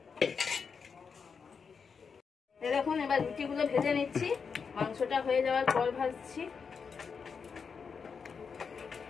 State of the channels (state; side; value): quieter; right; 5.8 dB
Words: দেখুন এবার রুটিগুলো ভেজে নিচ্ছি, মাংসটা হয়ে যাওয়ার পর ভাজছি।